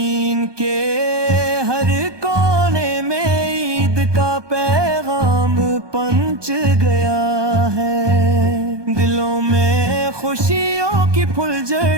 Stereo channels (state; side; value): late; left; 1.2 ms